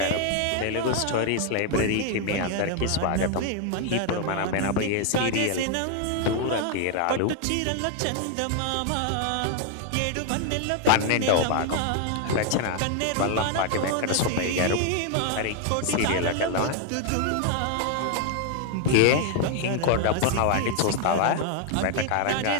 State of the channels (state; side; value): different; both; correlation 0.00